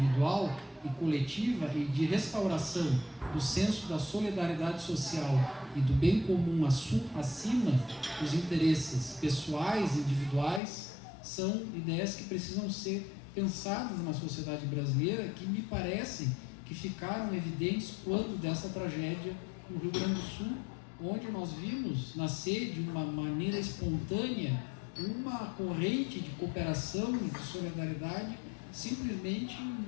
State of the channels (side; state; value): right; drops out; at 10.6 s